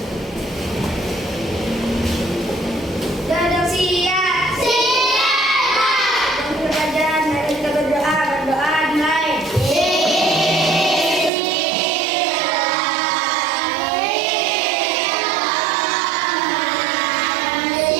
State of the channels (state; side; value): drops out; left; at 11.3 s